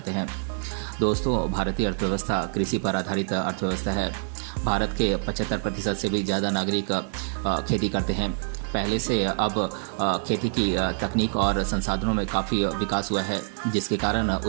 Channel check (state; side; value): silent; left; digital silence